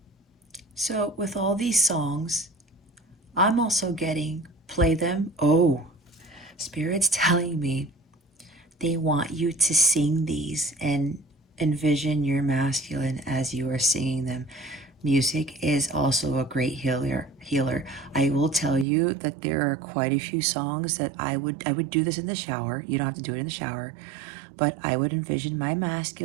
So with all these songs, I'm also getting, play them. Oh, Spirit's telling me they want you to sing these and envision your masculine as you are singing them. Music is also a great healer. I will tell you that there are quite a few songs that I would do this in the shower. You don't have to do it in the shower, but I would envision my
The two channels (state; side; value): drops out; left; at 18.9 s